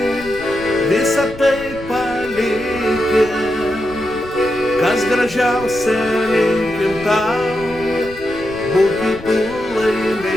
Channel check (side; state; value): left; noise; rumble, 17 dB below the sound